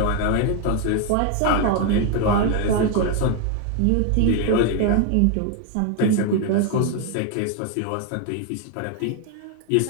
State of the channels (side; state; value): both; different; correlation 0.01